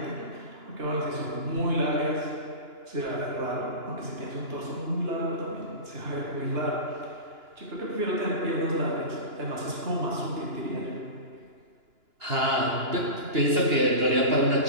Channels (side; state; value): left; late; 2.9 ms